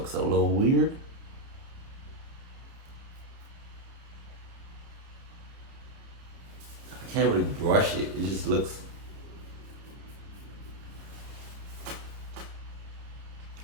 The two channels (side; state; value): left; late; 30 ms